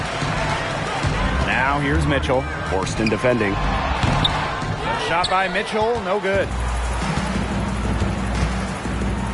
Now here's Mitchell. Horston defending. Shot by Mitchell, no good.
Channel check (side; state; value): both; identical; correlation 1.00